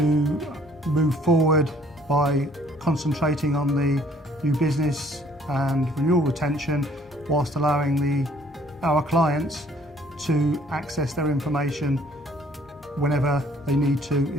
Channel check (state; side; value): normal; both; correlation 0.60